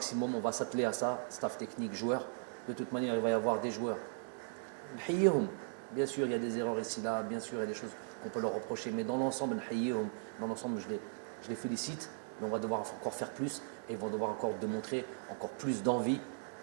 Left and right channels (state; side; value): silent; left; digital silence